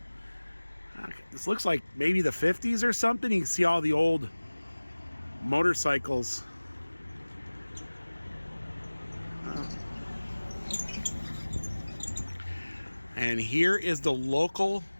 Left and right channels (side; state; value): both; inverted; correlation -1.00